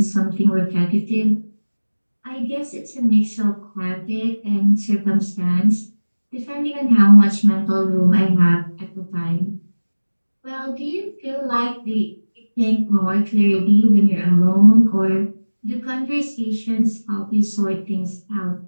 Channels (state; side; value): inverted; both; correlation -1.00